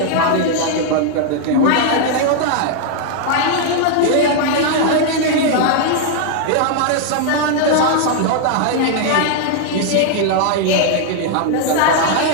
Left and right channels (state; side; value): different; both; correlation 0.00